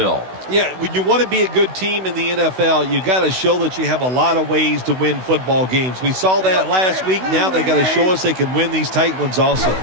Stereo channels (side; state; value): left; late; 16 ms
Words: Yeah, when you want to be a good team in the NFL, you got to show that you have a lot of ways to win football games. We saw that last week. Now they got to show us they can win these tight ones also.